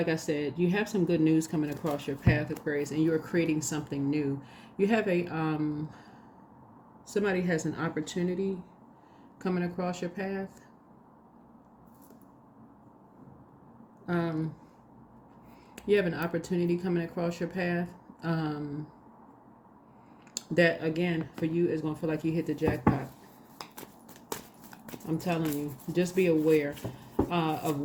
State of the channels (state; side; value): identical; both; correlation 1.00